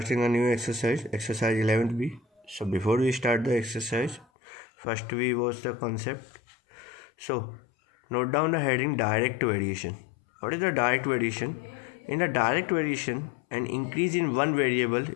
a new exercise 11th B. So before we start the exercise, first we watch the concept. So note down the heading direct variation. What is the direct variation? In the direct variation, an increase in one variable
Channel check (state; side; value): drops out; right; at 4.2 s